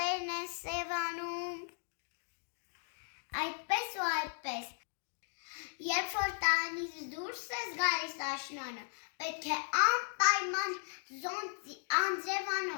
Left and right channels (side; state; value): right; silent; digital silence